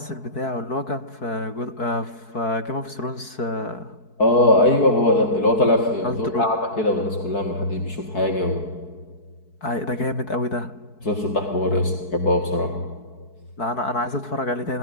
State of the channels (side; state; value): right; late; 4.6 ms